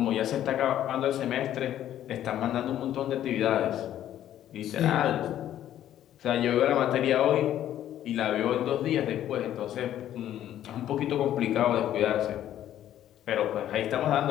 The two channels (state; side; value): quieter; right; 11.7 dB